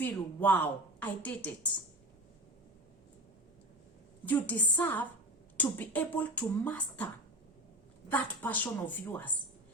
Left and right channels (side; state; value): both; normal; correlation 0.29